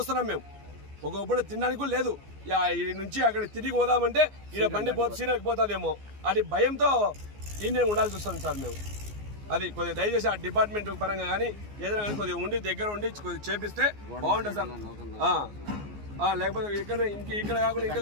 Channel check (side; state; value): left; late; 14 ms